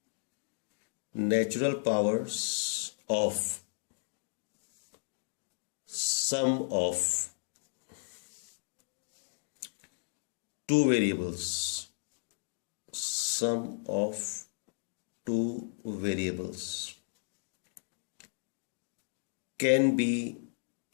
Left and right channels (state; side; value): silent; right; digital silence